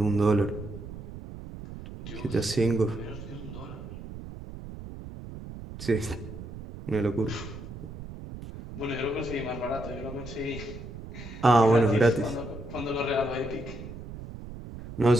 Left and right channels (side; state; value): right; noise; rumble, 12 dB below the sound